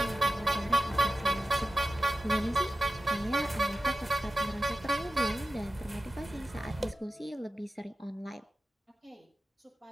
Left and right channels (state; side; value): normal; both; correlation 0.94